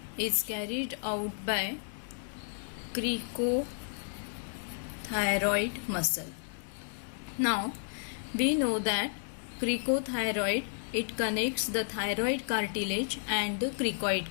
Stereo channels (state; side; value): silent; right; digital silence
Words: is carried out by cricothyroid muscle. Now we know that cricothyroid, it connects the thyroid cartilage and the